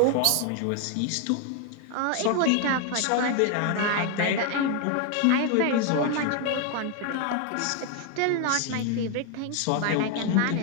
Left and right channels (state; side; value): different; both; correlation 0.01